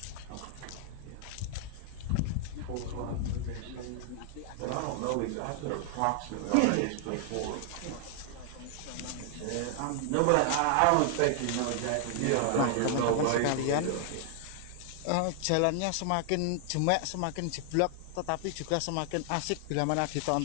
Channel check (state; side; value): different; both; correlation 0.00